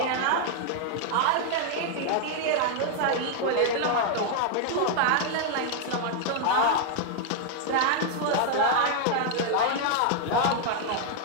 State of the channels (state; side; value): different; both; correlation 0.00